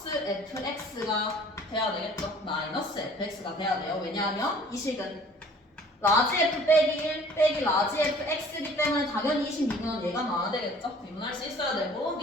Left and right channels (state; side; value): normal; both; correlation 0.52